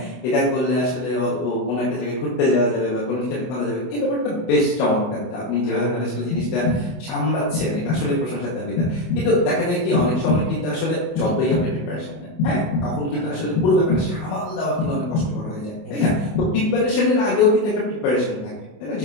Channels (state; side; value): late; right; 24 ms